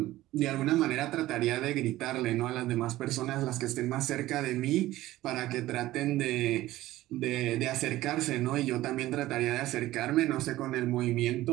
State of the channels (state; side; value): quieter; left; 16.1 dB